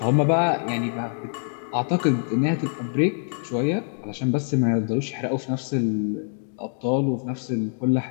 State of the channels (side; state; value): right; silent; digital silence